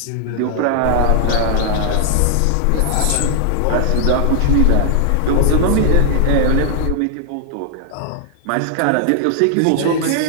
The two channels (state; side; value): different; both; correlation 0.00